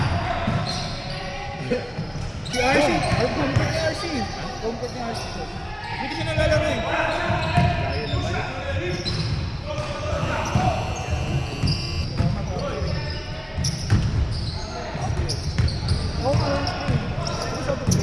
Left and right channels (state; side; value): identical; both; correlation 1.00